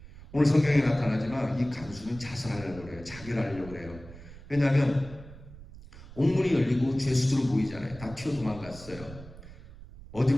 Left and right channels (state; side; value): noise; right; rumble, 17 dB below the sound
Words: 오늘 성경에 나타나지만 이 간수는 자살하려고 그래요. 자결하려고 그래요. 왜냐하면 옥문이 열리고 죄수들은 보이잖아요. 다 튀어 도망갔어요.